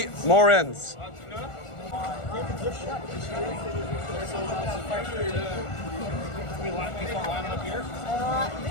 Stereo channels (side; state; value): right; late; 1.4 ms